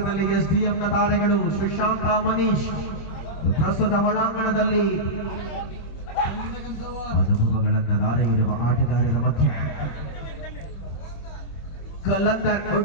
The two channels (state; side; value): late; right; 26 ms